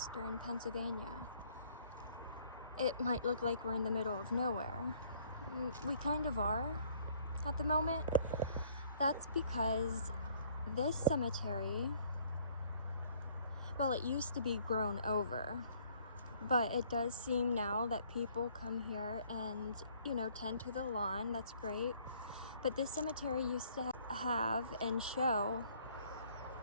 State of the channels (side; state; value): both; inverted; correlation -0.61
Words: Pennsylvania. It might look like we're in the middle of nowhere. We kind of are at the moment. That's because this cemetery, well, it used to be grown over, but it does seem now that people come here and, tend to the lawn. That's great. But this cemetery used to have and show